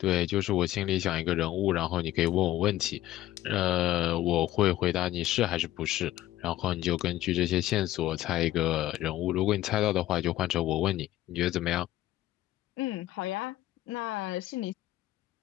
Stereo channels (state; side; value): quieter; right; 14.7 dB